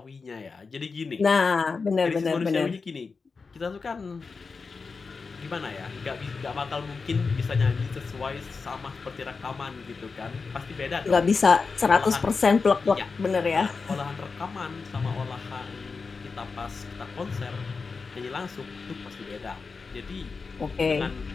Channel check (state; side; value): quieter; right; 4.7 dB